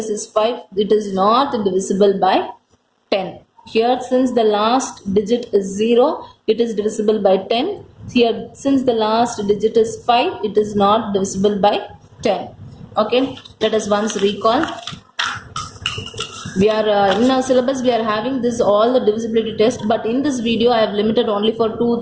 is 5. It is not divisible by 10. Here, since the last digit is 0, it is divisible by 10. Here, since the last digit is 5, it is not divisible by 10. Okay, let us once recall. We are in our syllabus, we are having this all the divisibility test, but in this video I have limited only for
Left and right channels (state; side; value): identical; both; correlation 1.00